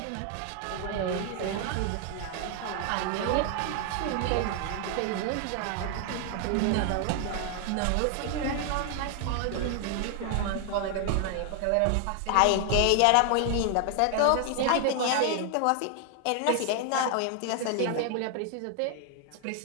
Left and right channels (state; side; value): different; both; correlation 0.00